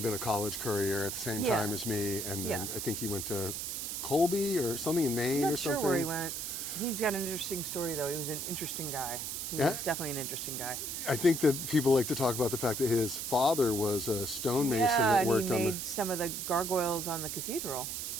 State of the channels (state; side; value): noise; right; hiss, 4 dB below the sound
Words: been a college courier at the same Yeah. time as me, and then Yeah. I think he went to Colby or something in Maine I'm or not sure something. where he went. He's got an interesting story, though. He was an interesting guy. He Yeah? was definitely an interesting guy. I think that people like to talk about the fact that his father was a stonemason Yeah, that and worked he on made some of the gargoyles on the cathedral.